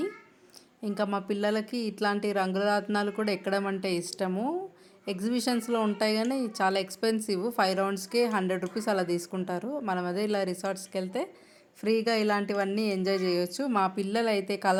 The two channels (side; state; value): both; identical; correlation 1.00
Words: ఇంకా మా పిల్లలకి ఇట్లాంటి రంగురత్నాలు కూడా ఎక్కడం అంటే ఇష్టము. ఎగ్జిబిషన్స్లో ఉంటాయి కానీ చాలా ఎక్స్పెన్సివ్, 5 రౌండ్స్కే 100 రూపీస్ అలా తీసుకుంటారు. మనం అదే ఇలా రిసార్ట్స్కి వెళ్తే ఫ్రీగా ఇలాంటివన్నీ ఎంజాయ్ చేయొచ్చు. మా పిల్లలు అయితే